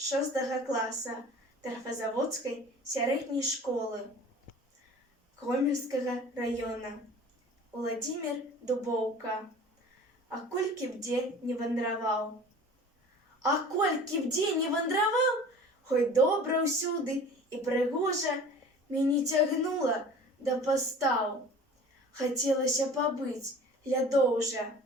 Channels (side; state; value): both; normal; correlation 0.43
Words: класа Тарфазаводскай сярэдняй школы Гомельскага района. Владимир Дубоўка. А колькі б дзе не вандраваў. А колькі б дзе не вандраваў, хоць добра ўсюды і прыгожа, мяне цягнула да пастаў. Хацелася пабыць лядоўжа.